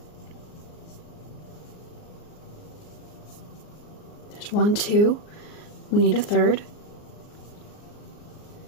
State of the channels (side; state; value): right; late; 39 ms